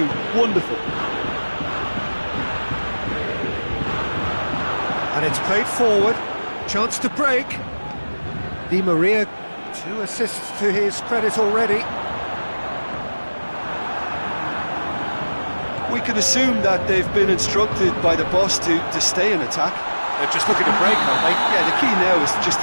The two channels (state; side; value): inverted; both; correlation -1.00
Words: Wonderful. And it's played forward. Chance to break. Di Maria, 2 assists to his credit already. We can assume that they've been instructed by the boss to stay in attack. They're just looking to break, aren't they? Yeah, the key now is just